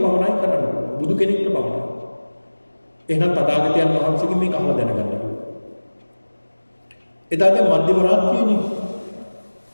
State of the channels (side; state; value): both; inverted; correlation -1.00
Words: කරන්නේ. බුදු කෙනෙකුට පමණයි. එහෙනම් තථාගතයන් වහන්සේගේ මේක අහලා දැනගන්න ඕනේ. එදා දැන් මධ්‍යම රාත්‍රියේනේ.